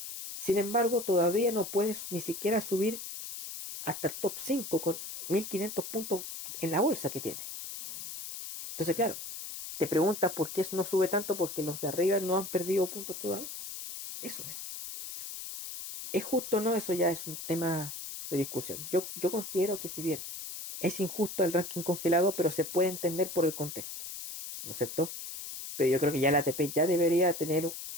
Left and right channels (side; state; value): left; noise; hiss, 8 dB below the sound